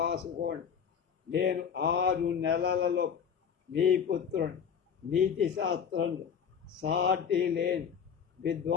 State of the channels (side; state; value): right; quieter; 7.4 dB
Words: నేను 6 నెలలలో మీ పుత్రుడు నీతి శాస్త్రంలో సాటి లేని